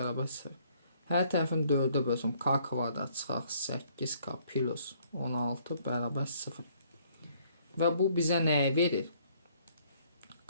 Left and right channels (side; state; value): both; inverted; correlation -0.63